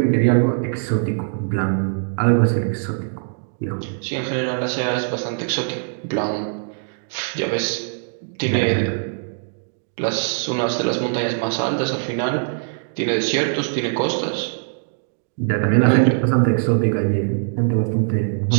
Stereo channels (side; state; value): left; silent; digital silence